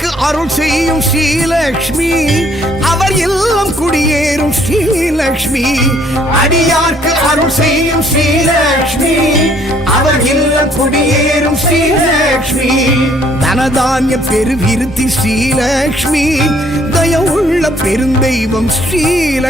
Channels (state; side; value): normal; both; correlation 0.63